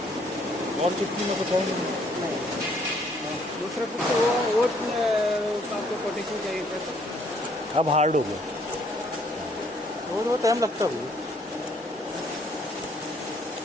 और चुटकी में कुछ और नहीं। दूसरा कुछ वो आपको कोटेशन चाहिए था सर। अब हार्ड हो गया। वो टाइम लगता है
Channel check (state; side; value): normal; both; correlation 0.65